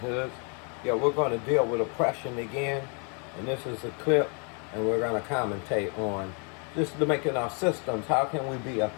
Yeah, we're going to deal with oppression again, and this is a clip, and we're going to commentate on just to making our systems. How can we be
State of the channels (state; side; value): quieter; right; 37.2 dB